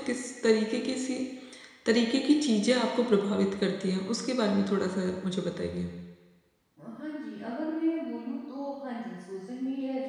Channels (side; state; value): both; identical; correlation 1.00